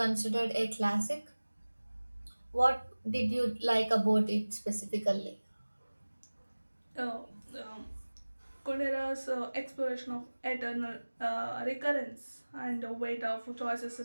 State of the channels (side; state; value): both; inverted; correlation -1.00